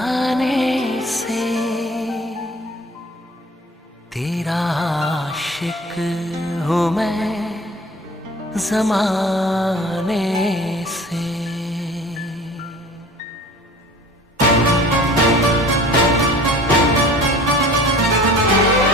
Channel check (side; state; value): both; normal; correlation 0.45